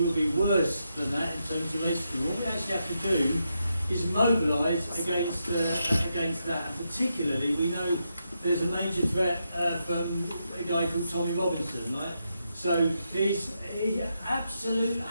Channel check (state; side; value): inverted; both; correlation -0.83